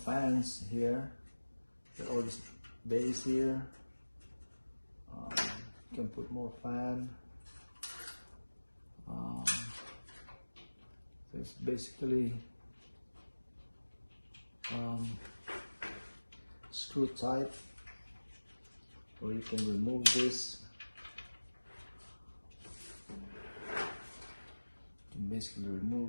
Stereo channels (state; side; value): inverted; both; correlation -1.00